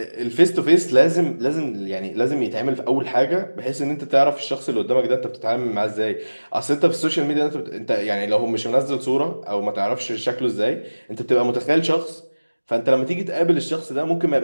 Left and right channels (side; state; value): both; inverted; correlation -1.00